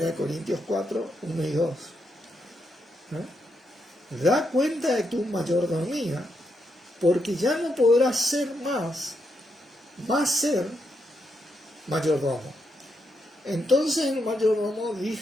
Corintios 4, 1 y 2. ¿No? Da cuenta de tu mayordomía, porque ya no podrás ser más ser mayordomo. Entonces el mayordomo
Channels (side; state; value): both; normal; correlation 0.81